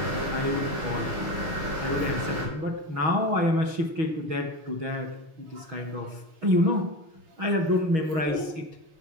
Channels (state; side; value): late; left; 6.3 ms